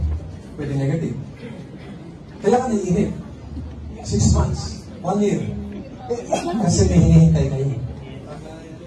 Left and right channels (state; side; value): identical; both; correlation 1.00